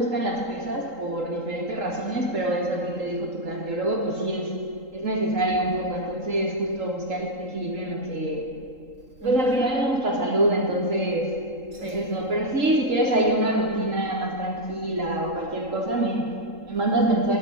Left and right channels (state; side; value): late; left; 3.8 ms